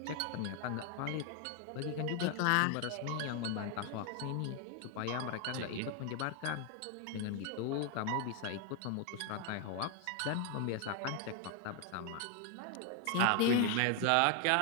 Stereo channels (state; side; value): different; both; correlation 0.01